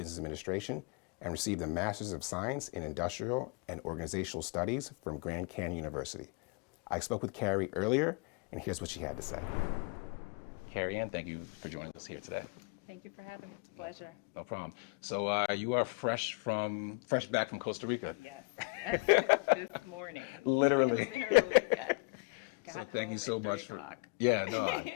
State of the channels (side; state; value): right; quieter; 32.0 dB